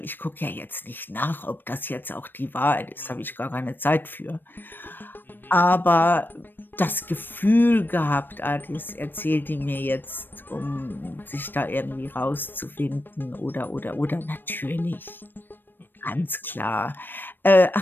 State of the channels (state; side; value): late; right; 0.094 ms